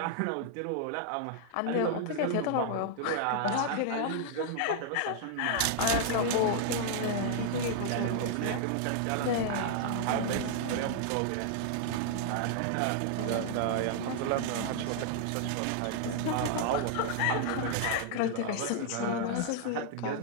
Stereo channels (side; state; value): both; different; correlation -0.01